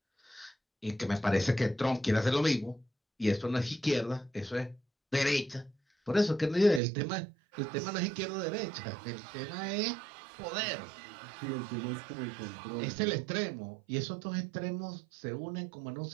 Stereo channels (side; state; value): left; drops out; at 6.8 s